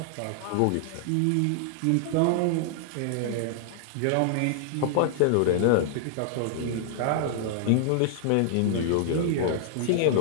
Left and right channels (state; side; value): different; both; correlation -0.01